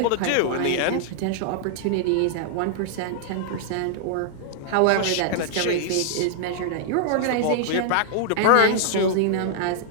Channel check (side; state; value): both; different; correlation -0.01